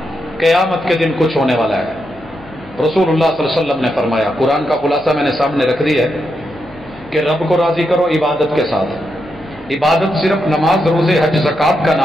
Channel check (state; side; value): noise; left; hum, 26 dB below the sound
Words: قیامت کے دن کچھ ہونے والا ہے۔ رسول اللہ صلی اللہ علیہ وسلم نے فرمایا، قرآن کا خلاصہ میں نے سامنے رکھ دیا ہے کہ رب کو راضی کرو عبادت کے ساتھ، عبادت صرف نماز روزے حج زکات کا